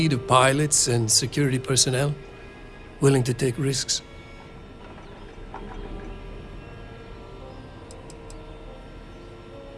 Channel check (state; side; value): identical; both; correlation 1.00